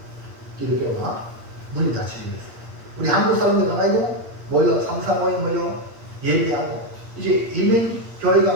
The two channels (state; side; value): late; left; 8.6 ms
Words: 기독교가 문이 닫히고 있어요. 우리 한국 사람들 가가지고 모여 상사 모임 모여 예배하고 이제 이민